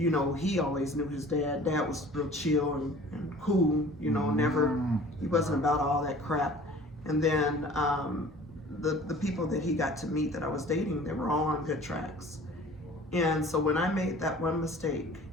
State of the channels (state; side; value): normal; both; correlation 0.47